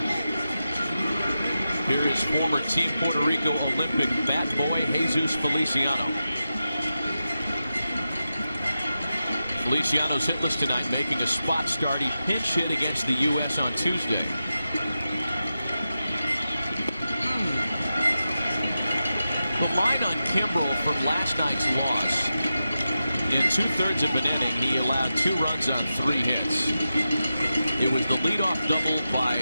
Here is former Team Puerto Rico Olympic bat boy Jesus Feliciano. Feliciano's hitless tonight, making a spot start. He pinch hit against the U.S. on Tuesday. The line on Kimbrel from last night's loss. In 2/3 of an inning, he allowed 2 runs on 3 hits. It was the leadoff double by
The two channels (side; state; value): both; inverted; correlation -0.91